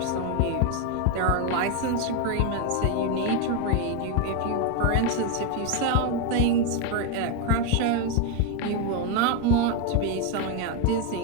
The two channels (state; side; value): different; both; correlation 0.02